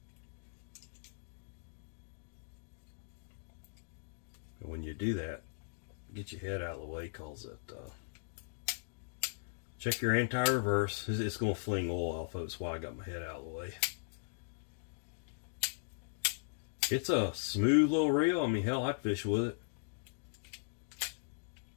When you do that, get your head out of the way, cause it check your anti-reverse. It's going to fling oil off of it. That's why I got my head out of the way. It's a smooth little reel. I mean, hell, I'd fish with it.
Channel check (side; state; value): right; silent; digital silence